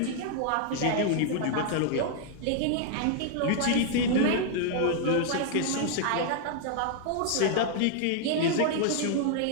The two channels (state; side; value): different; both; correlation -0.01